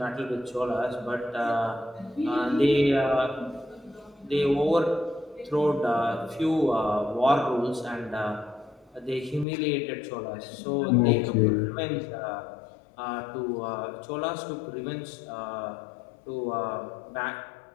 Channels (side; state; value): right; drops out; at 9.5 s